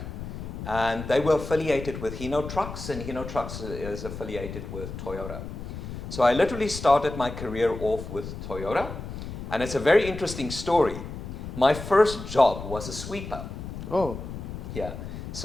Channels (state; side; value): noise; left; rumble, 9 dB below the sound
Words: and they were affiliated with Hino Trucks, and Hino Trucks is affiliated with Toyota. So I literally started my career off with Toyota, and it's a very interesting story. My first job was a sweeper. Oh. Yeah.